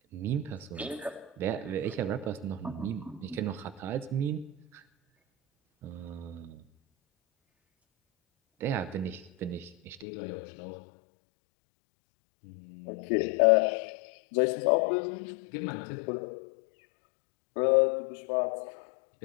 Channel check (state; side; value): drops out; right; at 10.1 s